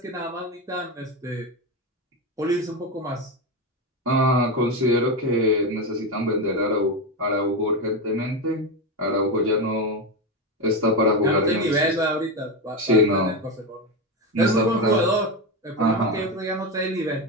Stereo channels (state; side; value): normal; both; correlation 0.14